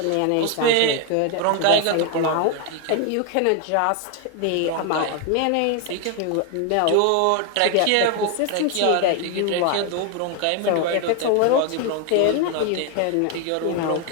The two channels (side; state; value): both; different; correlation 0.01